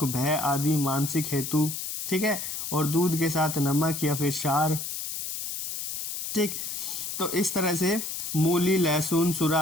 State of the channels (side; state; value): left; noise; hiss, 5 dB below the sound